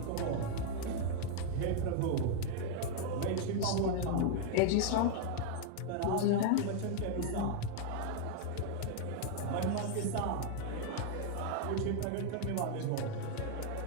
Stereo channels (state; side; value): different; both; correlation 0.00